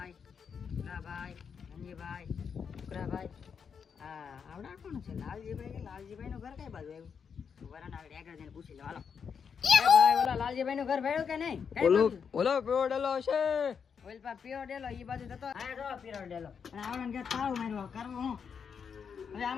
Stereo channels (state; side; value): quieter; right; 6.6 dB